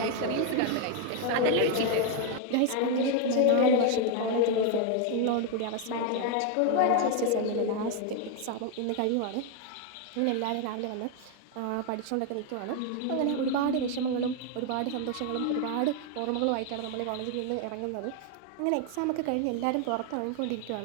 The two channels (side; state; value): both; different; correlation 0.01